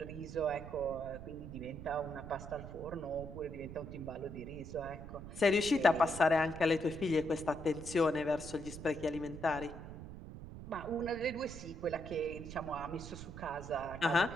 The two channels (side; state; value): right; noise; rumble, 11 dB below the sound